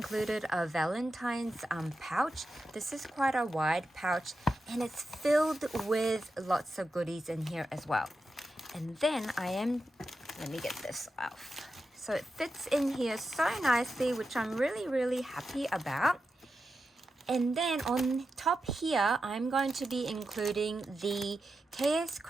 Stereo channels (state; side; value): normal; both; correlation 0.89